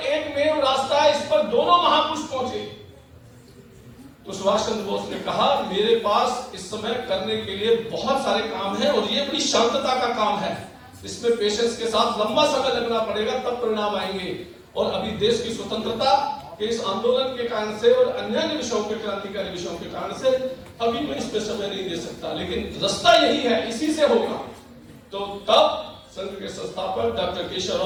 रास्ता, इस पर दोनों महापुरुष पहुंचे। तो सुभाष चंद्र बोस ने कहा मेरे पास इस समय करने के लिए बहुत सारे काम हैं और ये बड़ी शांतता का काम है, इसमें पेशेंस के साथ लंबा समय लगना पड़ेगा, तब परिणाम आएंगे। और अभी देश की स्वतंत्रता कि इस आंदोलन के कारण से और अन्य विषयों के, क्रांतिकारी विषयों के कारण से अभी मैं इस पे समय नहीं दे सकता, लेकिन रास्ता यही है, इसी से होगा। तो तब संघ के संस्थापक डॉक्टर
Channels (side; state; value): both; identical; correlation 1.00